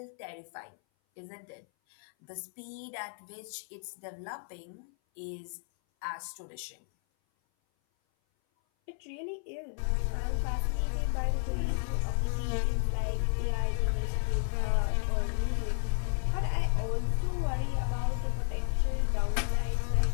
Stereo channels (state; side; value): silent; right; 56 dB below the other